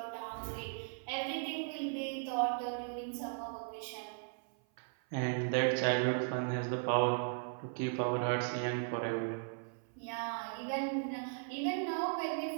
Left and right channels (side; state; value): left; silent; 53 dB below the other